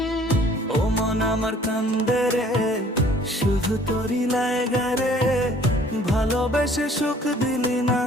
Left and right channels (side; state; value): both; normal; correlation 0.55